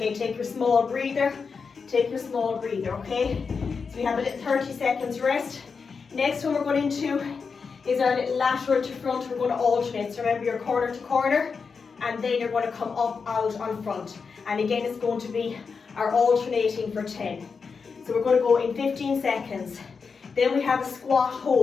take your small breather. Take your small breather, okay? So we have a little 30 seconds rest. Next one we're going into is our little lateral to front. We're going to alternate. So remember, you're corner to corner, and then you're going to come up, out, on front. And again, it's going to be our alternating for 10. So we're going to go in 15 seconds. Then we have a squat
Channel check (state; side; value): quieter; right; 5.3 dB